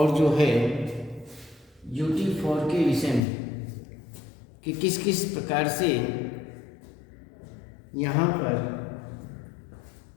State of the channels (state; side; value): drops out; right; at 3.2 s